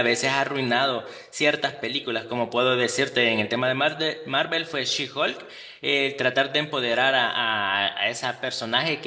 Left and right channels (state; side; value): identical; both; correlation 1.00